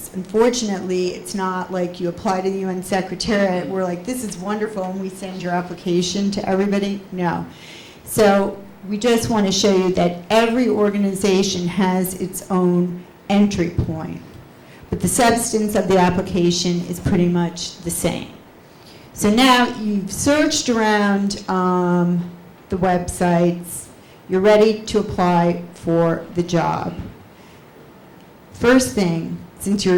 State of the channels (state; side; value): identical; both; correlation 1.00